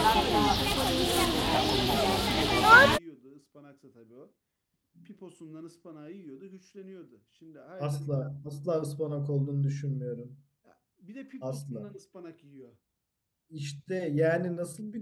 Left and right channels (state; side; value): identical; both; correlation 1.00